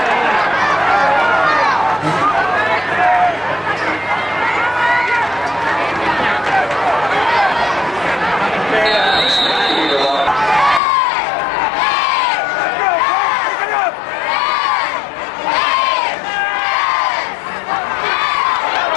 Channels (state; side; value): drops out; right; at 10.8 s